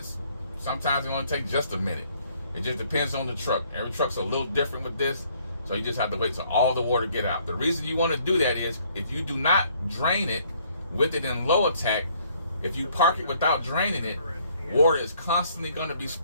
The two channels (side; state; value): both; inverted; correlation -0.64